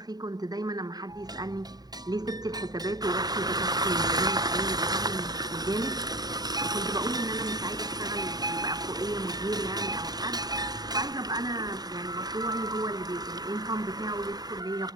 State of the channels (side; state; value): left; late; 0.19 ms